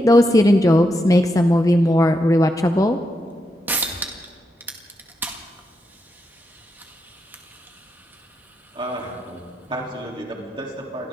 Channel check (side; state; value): both; normal; correlation 0.84